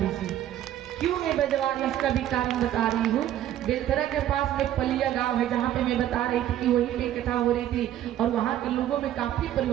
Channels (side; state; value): left; quieter; 12.0 dB